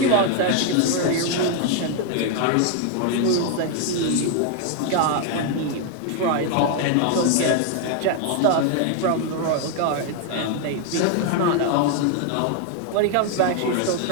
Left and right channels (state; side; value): different; both; correlation 0.01